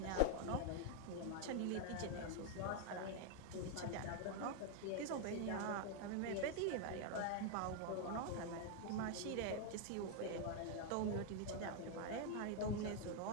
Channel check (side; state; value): both; different; correlation 0.00